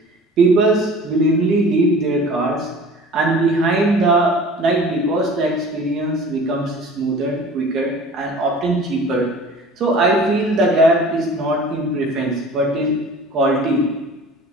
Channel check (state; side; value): normal; both; correlation 0.43